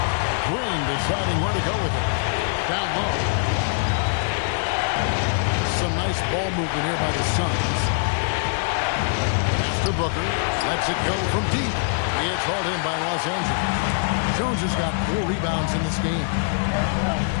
Green deciding where to go with it. Down low. Some nice ball movement here by the Suns. Pass to Booker. Lets it go from deep. It's hauled in by Los Angeles. Jones has got 4 rebounds in this game.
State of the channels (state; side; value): silent; right; 61 dB below the other